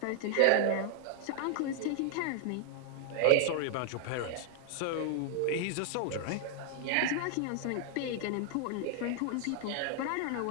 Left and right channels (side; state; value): both; different; correlation 0.00